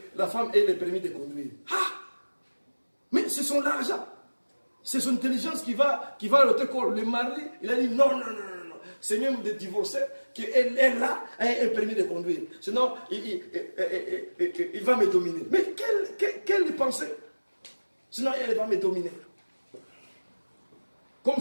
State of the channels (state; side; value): inverted; both; correlation -1.00